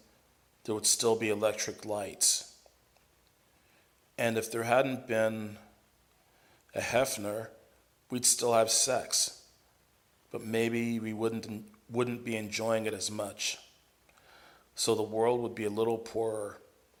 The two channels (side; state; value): both; identical; correlation 1.00